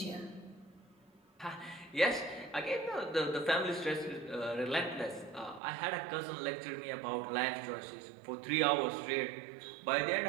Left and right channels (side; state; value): left; drops out; at 5.6 s